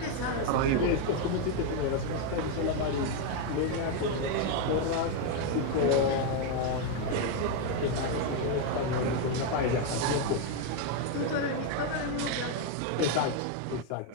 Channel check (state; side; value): different; both; correlation 0.01